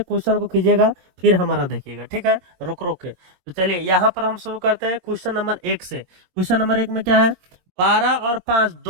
क्वेश्चन को कीजिएगा, फिर हमारा देखिएगा। ठीक है, रुक रुक के। तो चलिए यहाँ पर हम शुरू करते हैं क्वेश्चन नंबर 1 से। क्वेश्चन नंबर 1 में क्या है? 12 और 5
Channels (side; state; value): left; late; 22 ms